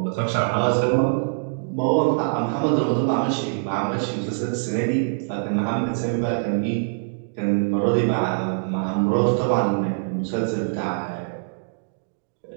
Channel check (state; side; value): silent; left; digital silence